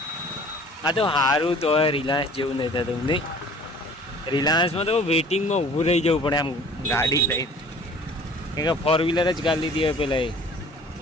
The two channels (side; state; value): both; normal; correlation 0.49